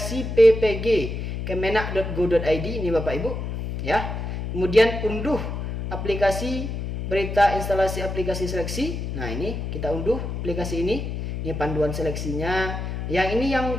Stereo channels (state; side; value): noise; left; hum, 4 dB below the sound